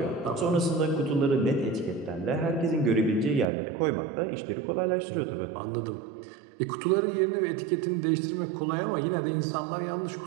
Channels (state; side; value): drops out; left; at 3.5 s